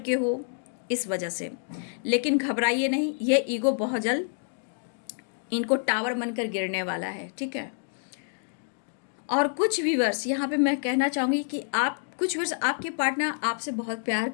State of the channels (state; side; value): silent; right; digital silence